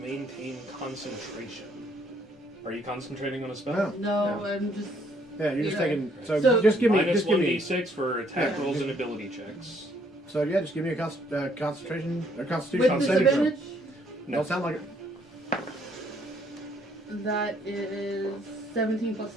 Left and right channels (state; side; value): normal; both; correlation 0.66